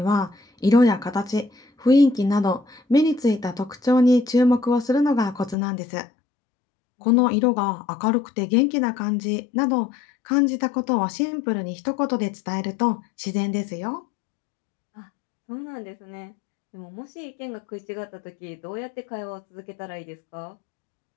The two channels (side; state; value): right; drops out; at 5.6 s